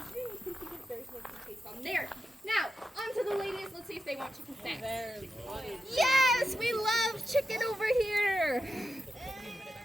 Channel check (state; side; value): normal; both; correlation 0.89